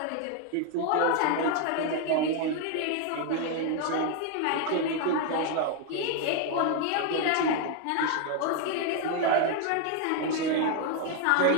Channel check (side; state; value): both; different; correlation 0.01